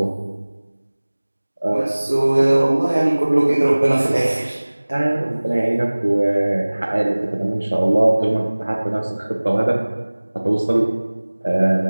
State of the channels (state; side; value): inverted; both; correlation -1.00